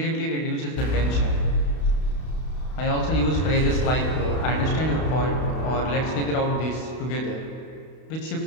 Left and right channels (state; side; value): late; right; 32 ms